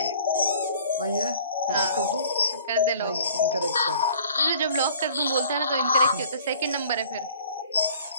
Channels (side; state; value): both; inverted; correlation -0.50